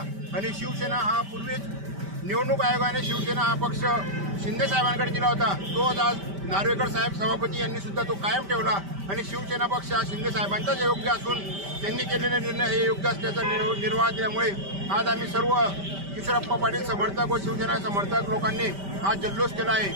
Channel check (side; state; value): left; late; 5.1 ms